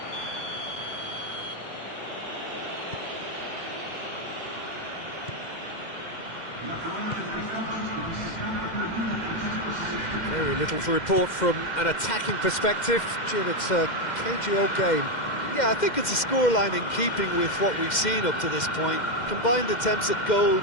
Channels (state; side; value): late; right; 2.1 ms